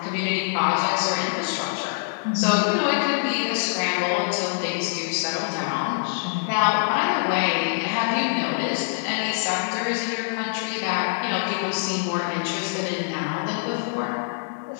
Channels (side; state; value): right; silent; digital silence